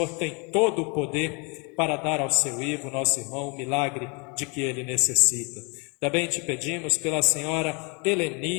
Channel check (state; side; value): quieter; right; 32.1 dB